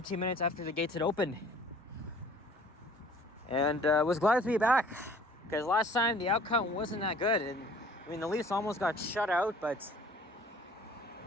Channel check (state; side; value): normal; both; correlation 0.51